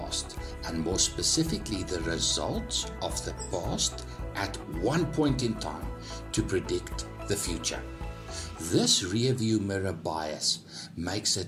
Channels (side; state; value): both; identical; correlation 1.00